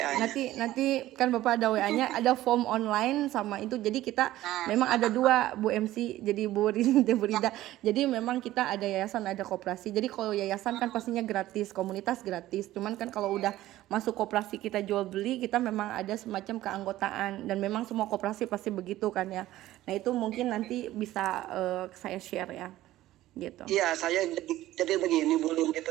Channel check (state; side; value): quieter; left; 15.2 dB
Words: nanti kan Bapak ada WA-nya, ada form online sama itu. Jadi kita memang ada dua Bu MC, jadi Bu Rida. Jadi memang kita ada yayasan, ada koperasi. Jadi kalau yayasan kan pastinya gratis, komunitas gratis. Cuman kan kalau udah masuk koperasi kita jual beli, kita memang ada semacam keanggotaan, dan memang semua koperasi pasti begitu kan ya. Nah itu mungkin nanti bisa saya share ya gitu. Iya, saya jadi begini Bu Lin, gitu,